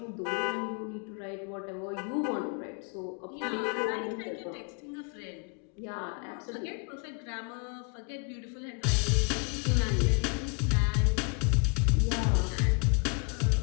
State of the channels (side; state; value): right; quieter; 34.2 dB